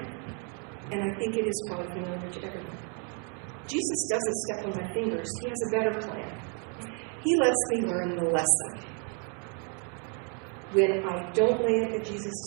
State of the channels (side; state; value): left; quieter; 39.0 dB